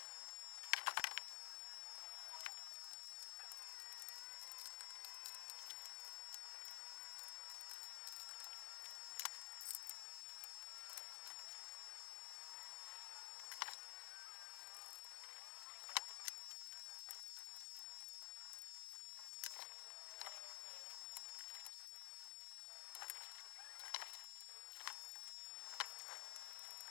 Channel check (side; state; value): right; silent; digital silence